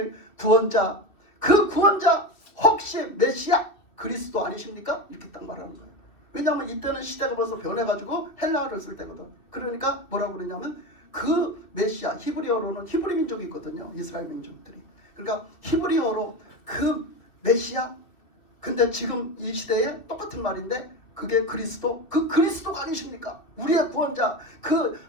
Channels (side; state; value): right; late; 2.5 ms